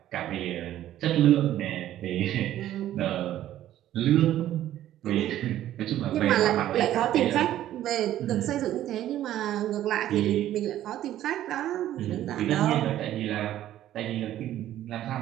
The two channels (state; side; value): quieter; left; 12.7 dB